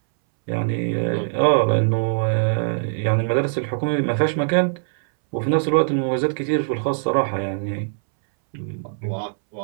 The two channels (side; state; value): left; silent; 64 dB below the other